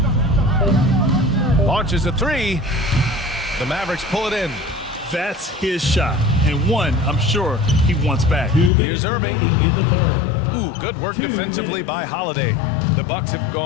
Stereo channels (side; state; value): right; drops out; at 8.7 s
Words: Launches a 3. The Mavericks pull it in. That's his shot, and one I'm sure he wants back. Here's Irving. Ooh, good work defensively by Holiday. The Bucks have